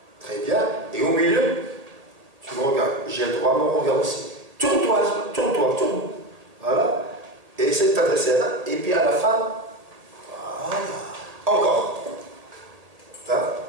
très bien, et au milieu, tu me regardes, j'ai le droit à mon regard aussi. Tourne-toi, tourne. Voilà, et essaie de t'adresser là, et puis à la fin, voilà, encore. Là,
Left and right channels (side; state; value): left; late; 1.7 ms